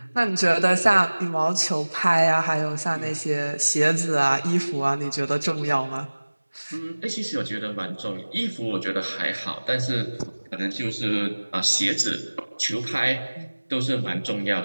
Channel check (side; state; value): both; inverted; correlation -1.00